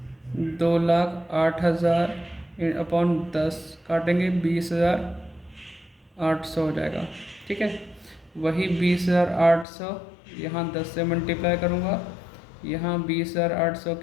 2,08,000 अपॉन 10 काटेंगे 20,800 हो जाएगा। ठीक है, वही 20,800 यहाँ 10 से मल्टीप्लाई करूँगा, यहाँ 20,800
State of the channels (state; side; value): drops out; right; at 9.7 s